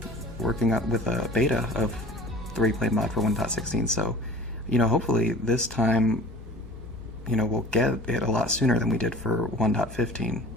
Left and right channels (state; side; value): normal; both; correlation 0.44